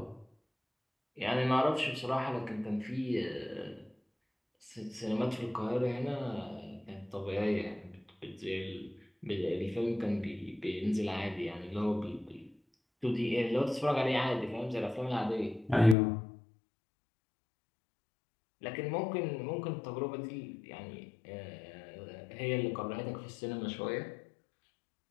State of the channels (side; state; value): right; drops out; at 16.0 s